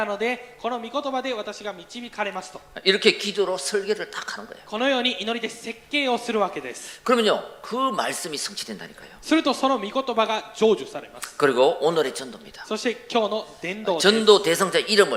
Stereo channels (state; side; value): identical; both; correlation 1.00